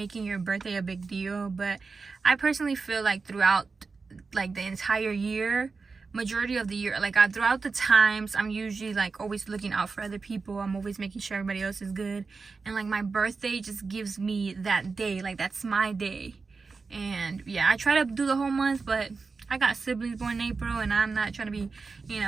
your birthday a big deal. But I personally feel like throughout like the entire year, majority of the year, like throughout the times, I'm usually like always looking out for other people. I'm always making sure everybody else is good, and like my birthday just gives me that day, like that's my day. And yeah, I try to do the whole month, but I got siblings born in April, and I'm not trying to be, you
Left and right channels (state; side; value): quieter; left; 4.5 dB